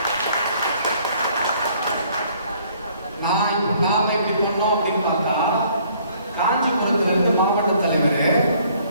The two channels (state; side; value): inverted; both; correlation -0.61